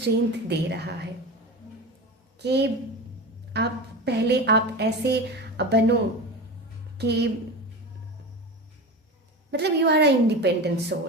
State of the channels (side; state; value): both; normal; correlation 0.27